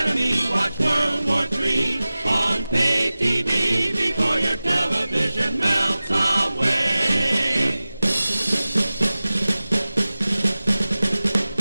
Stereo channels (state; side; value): inverted; both; correlation -0.97